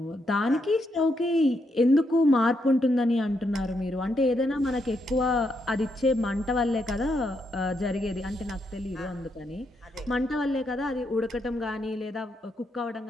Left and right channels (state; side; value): normal; both; correlation 0.79